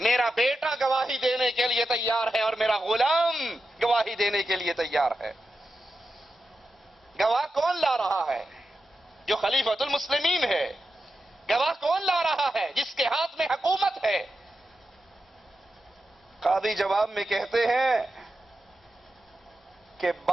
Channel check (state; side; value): normal; both; correlation 0.90